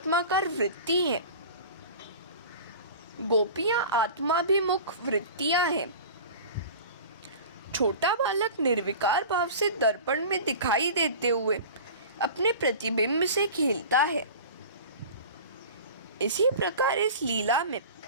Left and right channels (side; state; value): both; inverted; correlation -0.37